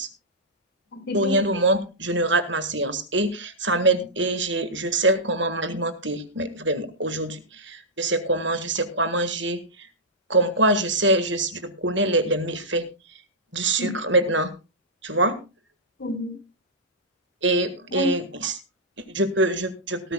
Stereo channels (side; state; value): both; normal; correlation -0.12